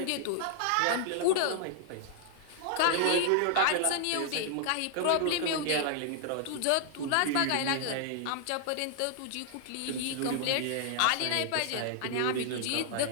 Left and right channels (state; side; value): different; both; correlation -0.01